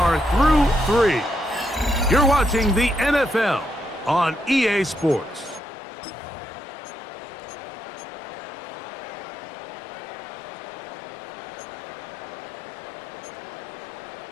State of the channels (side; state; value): right; drops out; at 5.6 s